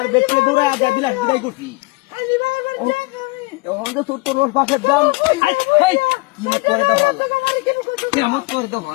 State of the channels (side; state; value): right; quieter; 25.5 dB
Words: দেখতে দৌড়ে বিলাস বিদায় করছি। এখন তো তোর রোজ পাশের দাম কিমত করে তো ভালো, কিমত করে তো